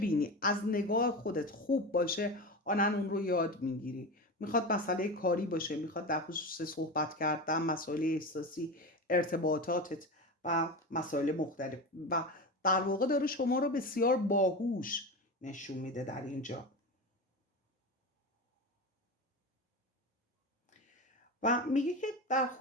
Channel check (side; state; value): both; normal; correlation 0.24